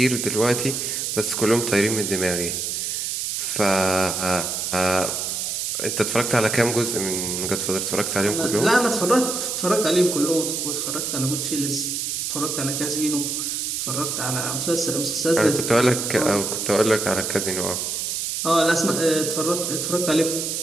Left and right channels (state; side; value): noise; right; hiss, 2 dB below the sound